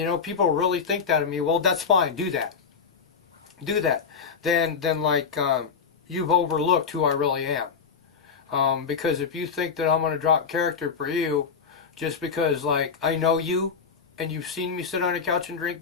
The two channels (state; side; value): quieter; right; 6.0 dB